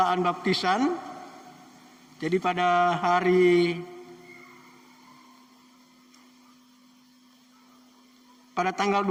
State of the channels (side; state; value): both; identical; correlation 1.00